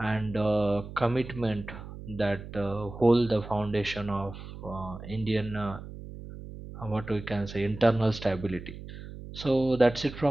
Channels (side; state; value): right; noise; hum, 12 dB below the sound